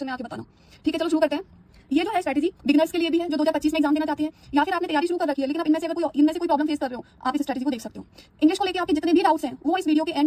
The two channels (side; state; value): both; identical; correlation 1.00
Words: में आके बताना। ठीक है, चलो शुरू करते हैं। ये जो है स्ट्रेटजी बिगिनर्स के लिए भी है जो 2025 में एग्जाम देना चाहते हैं, या फिर आपने तैयारी शुरू कर रखी है लेकिन अब इनमें से कोई प्रॉब्लम फेस कर रहे हो, आप इस स्ट्रेटजी को देख सकते हो। इंग्लिश को लेकर आपके जितने भी डाउट्स हैं वो इस वीडियो के